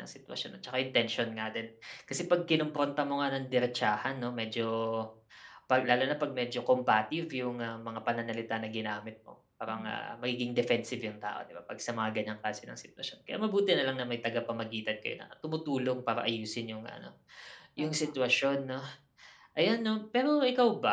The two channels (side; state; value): both; identical; correlation 1.00